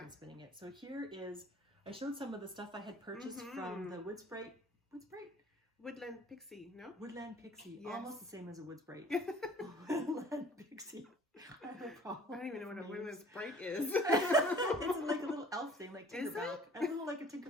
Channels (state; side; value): normal; both; correlation 0.51